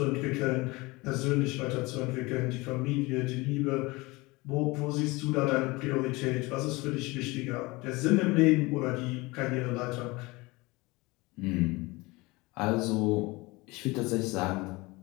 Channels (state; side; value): quieter; right; 23.3 dB